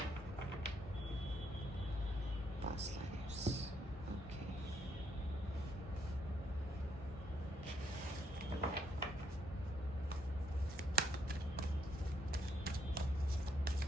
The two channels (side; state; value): both; normal; correlation 0.73